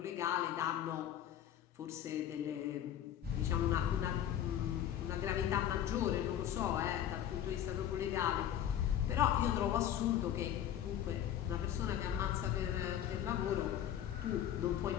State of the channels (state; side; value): quieter; right; 10.6 dB